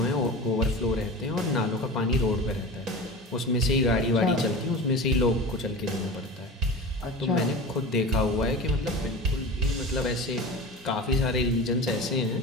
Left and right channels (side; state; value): both; normal; correlation 0.31